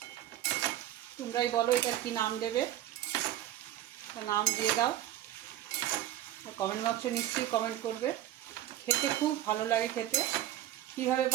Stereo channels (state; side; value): quieter; left; 13.0 dB